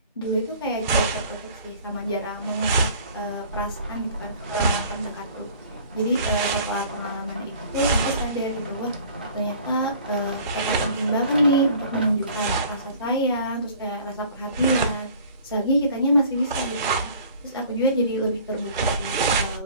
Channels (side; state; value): both; inverted; correlation -0.49